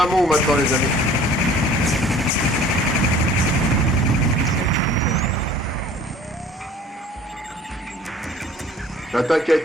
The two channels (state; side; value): normal; both; correlation 0.49